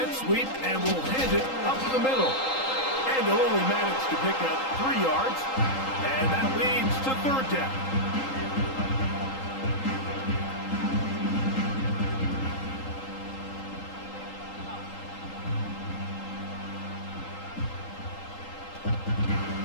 sweep and will hand it up the middle. And they'll only manage to pick up 3 yards. And that leads to 3rd down.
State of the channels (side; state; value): right; late; 3.8 ms